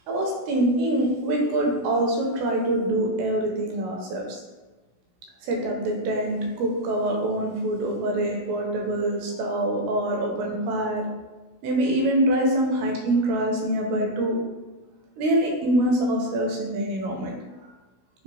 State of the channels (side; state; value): left; late; 16 ms